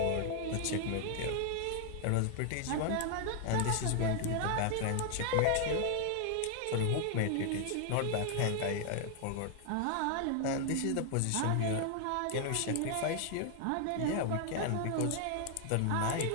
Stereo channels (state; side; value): different; both; correlation 0.00